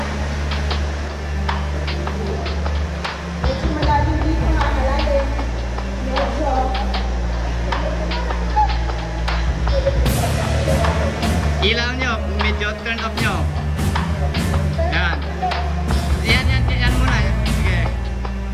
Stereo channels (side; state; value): both; identical; correlation 1.00